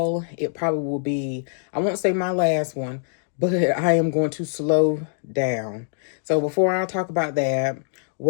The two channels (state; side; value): silent; right; digital silence